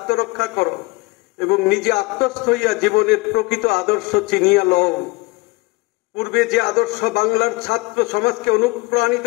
করো এবং নিজে আত্মস্থ হইয়া জীবনের প্রকৃত আদর্শ চিনিয়া লও। পূর্বে যে আদর্শ বাংলার ছাত্র সমাজকে অনুপ্রাণিত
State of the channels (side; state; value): right; quieter; 24.5 dB